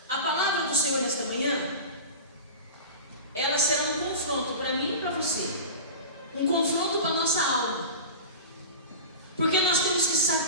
a palavra do Senhor nesta manhã, ela será um confronto para mim e para você, um confronto para a nossa alma, porque nós temos que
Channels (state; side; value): inverted; both; correlation -0.31